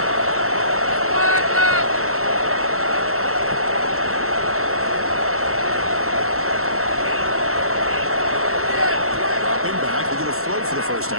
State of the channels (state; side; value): late; left; 0.63 ms